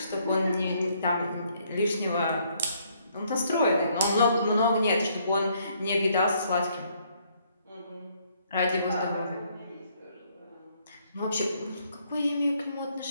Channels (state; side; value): inverted; both; correlation -0.68